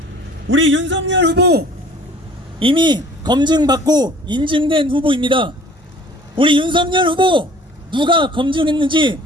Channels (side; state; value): both; normal; correlation 0.51